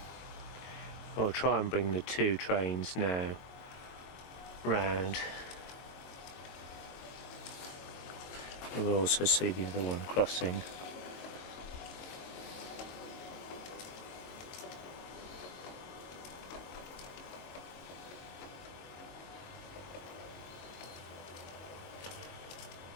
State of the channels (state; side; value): late; right; 22 ms